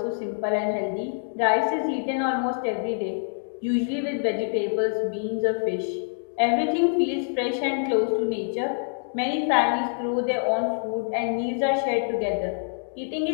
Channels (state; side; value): silent; right; digital silence